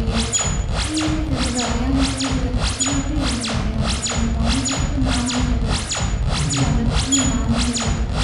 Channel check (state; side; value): identical; both; correlation 1.00